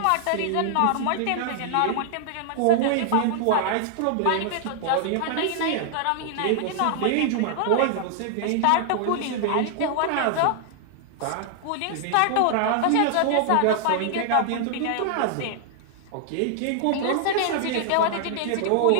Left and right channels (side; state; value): both; different; correlation 0.00